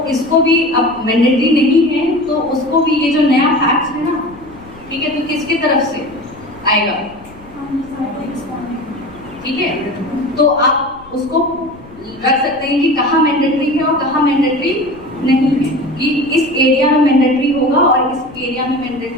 इसको भी अब मैंडेटरी नहीं है तो उसको भी ये जो नया फैक्ट है ना, ठीक है, तो किसके तरफ से आएगा, ठीक है। तो आप उसको रख सकते हैं कि कहाँ मैंडेटरी है और कहाँ मैंडेटरी नहीं है, कि इस एरिया में मैंडेटरी होगा और इस एरिया में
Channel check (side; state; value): left; noise; rumble, 23 dB below the sound